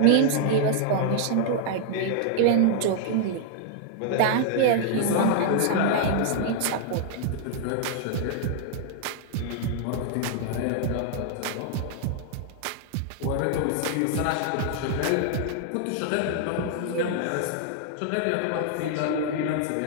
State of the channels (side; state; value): both; different; correlation 0.00